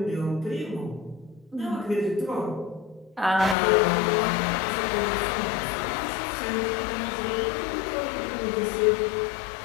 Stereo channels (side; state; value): right; drops out; at 3.6 s